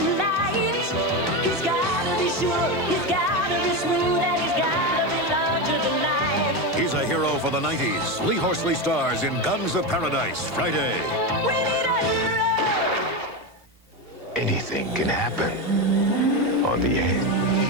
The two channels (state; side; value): normal; both; correlation 0.14